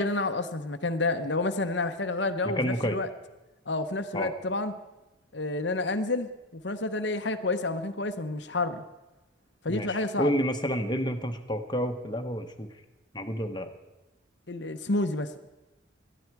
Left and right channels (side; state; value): both; normal; correlation 0.21